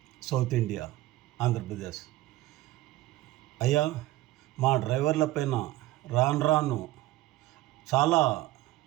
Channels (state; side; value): quieter; left; 17.0 dB